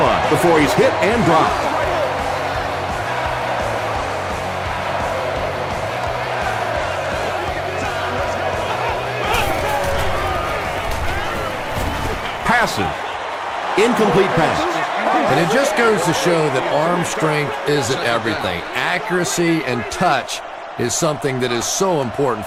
before he's hit and dropped. Passes. Incomplete pass. And it just goes to show that arm strength isn't everything. Accuracy and touch is something that is so important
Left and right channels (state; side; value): identical; both; correlation 1.00